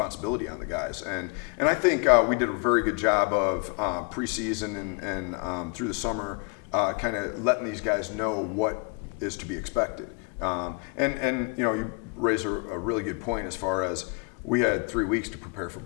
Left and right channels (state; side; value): quieter; right; 34.5 dB